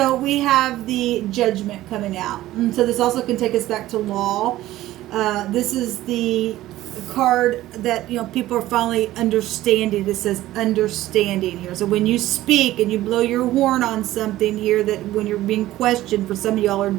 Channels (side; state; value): left; quieter; 15.4 dB